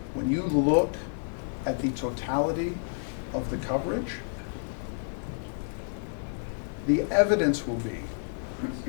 when you look at the totality of the coverage, the evidence will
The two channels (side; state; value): right; silent; 58 dB below the other